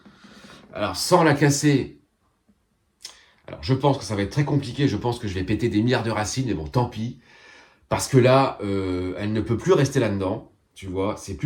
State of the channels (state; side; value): identical; both; correlation 1.00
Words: Alors, sans la casser, alors je pense que ça va être très compliqué. Je pense que je vais péter des milliards de racines, mais bon, tant pis. Parce que là, elle ne peut plus rester là-dedans. Tu vois, c'est